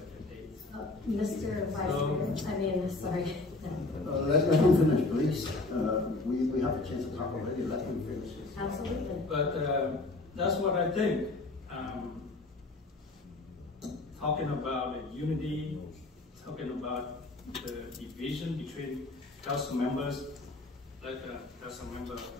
dates. Mr. Vice Mayor, I mean, sorry. Let him finish, please. We have a chance to talk already. Let him finish. Absolutely. But that's what I think. Talking about the unity, talking about the division between council members, like Council Member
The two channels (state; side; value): quieter; right; 3.2 dB